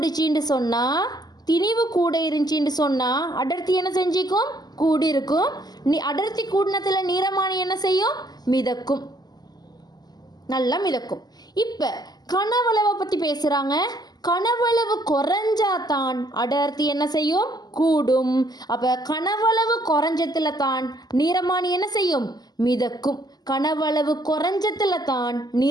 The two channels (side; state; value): right; late; 0.20 ms